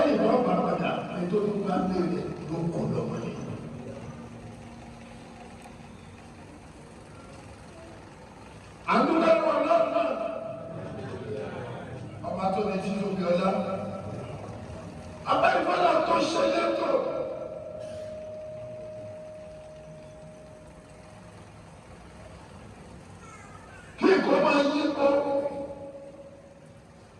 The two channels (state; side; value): identical; both; correlation 1.00